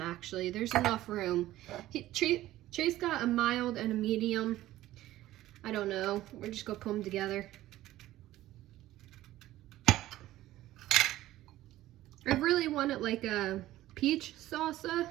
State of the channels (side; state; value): left; quieter; 15.1 dB